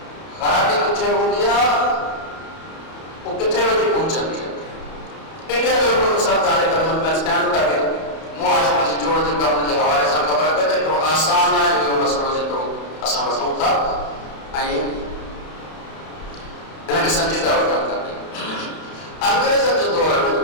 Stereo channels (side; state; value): right; late; 31 ms